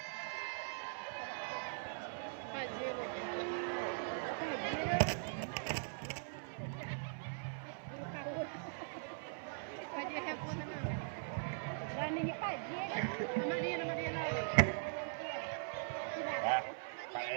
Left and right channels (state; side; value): silent; left; 50 dB below the other